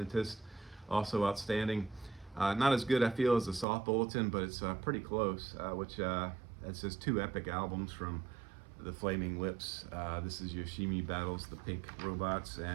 also outstanding. Not as good, I feel, as the Soft Bulletin, but it's pretty close, which that's just 2 epic albums from the Flaming Lips. This is Yoshimi Battles the Pink Robots,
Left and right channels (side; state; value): left; drops out; at 3.7 s